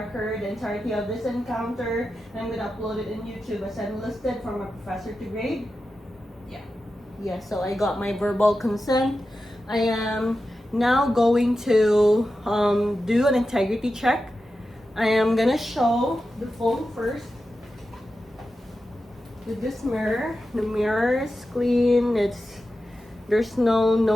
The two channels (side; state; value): both; normal; correlation 0.91